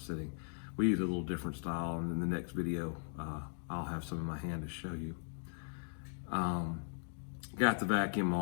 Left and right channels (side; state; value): right; silent; digital silence